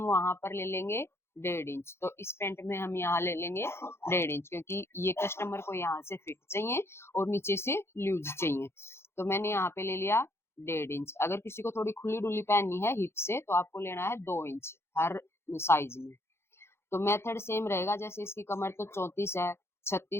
वहां पर ले लेंगे 1.5 इंच। तो इस पैंट में हम यहाँ ले लेंगे 1.5 इंच, क्योंकि ये कस्टमर को यहाँ से फिट चाहिए और नीचे से लूज चाहिए। तो मैंने यहाँ पे ले लिया 1.5 इंच। अगर किसी को थोड़ी खुली डुली पहननी है हिप से, तो आपको लेना है 2 इंच हर साइज में। तो मेथड सेम रहेगा। जैसे इसकी कमर तो 34 है,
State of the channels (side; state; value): right; late; 0.12 ms